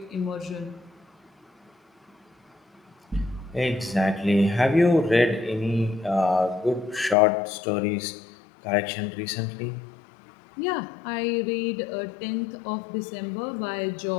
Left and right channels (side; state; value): right; drops out; at 7.2 s